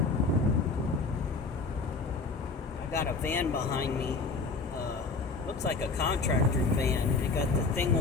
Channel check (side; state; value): right; quieter; 4.2 dB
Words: I got a van behind me. Looks like a contractor van. It got the thing